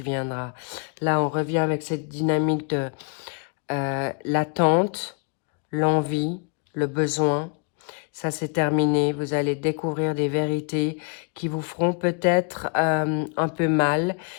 viendra. Là, on revient avec cette dynamique de l'attente, l'envie, le besoin. Ça, c'est terminé. Vous allez découvrir des vérités qui vous feront peut-être un peu mal,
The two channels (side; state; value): right; quieter; 39.0 dB